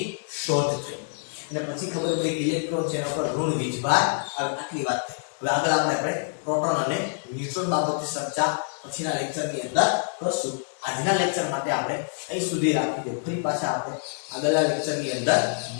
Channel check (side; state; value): right; silent; digital silence